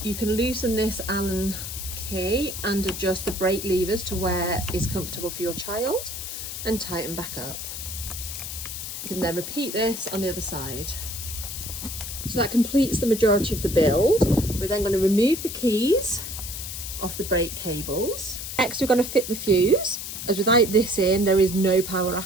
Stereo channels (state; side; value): noise; left; hiss, 7 dB below the sound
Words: you can loosen this Allen key and adjust the brake levers to where is comfortable for your child and tighten back up. You can then repeat this on the other side. So that completes the majority of the build. We're then going to remove the keys off the brake cables. Next, we're going to fit the fuse. As without this in, there is no power